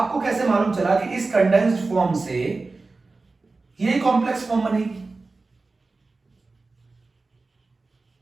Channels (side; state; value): left; quieter; 3.6 dB